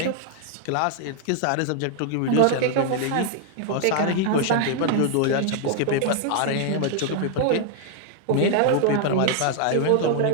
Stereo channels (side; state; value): both; different; correlation 0.00